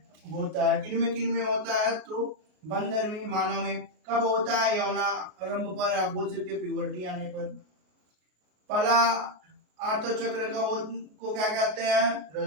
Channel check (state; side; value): late; left; 33 ms